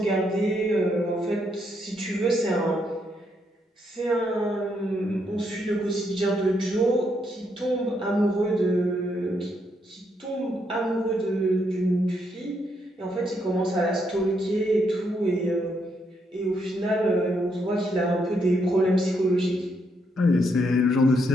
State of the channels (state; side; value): normal; both; correlation 0.76